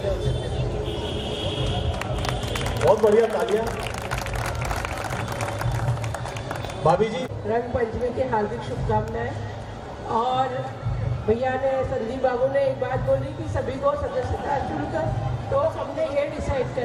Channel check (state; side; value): identical; both; correlation 1.00